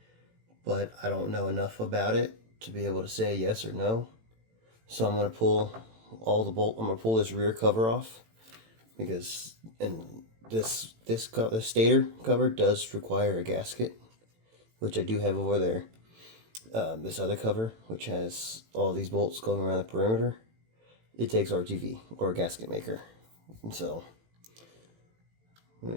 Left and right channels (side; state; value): left; late; 18 ms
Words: But I don't know enough about it to be able to say yes or no. So I'm going to pull all the bolt. I'm going to pull this rear cover off, because this stator cover does require a gasket, which I do have over there. This other cover, which has all these bolts going around the perimeter, it takes RTV or a gasket maker. And so let me